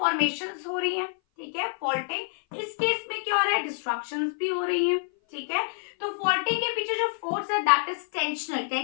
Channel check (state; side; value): silent; right; 57 dB below the other